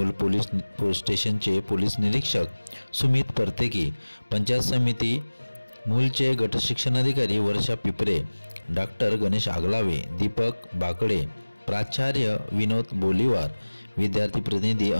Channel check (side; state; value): both; inverted; correlation -1.00